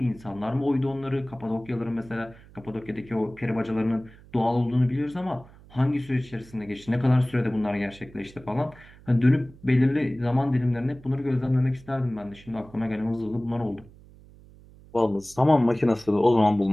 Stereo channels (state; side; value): noise; right; hum, 23 dB below the sound